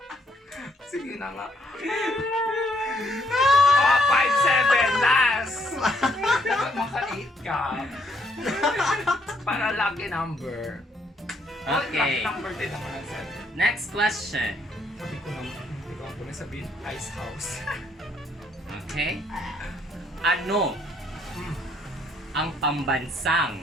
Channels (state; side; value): normal; both; correlation 0.70